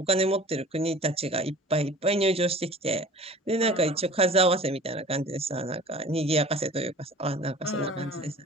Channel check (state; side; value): normal; both; correlation 0.44